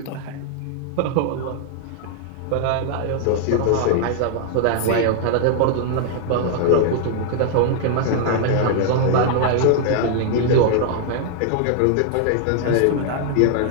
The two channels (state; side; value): different; both; correlation 0.00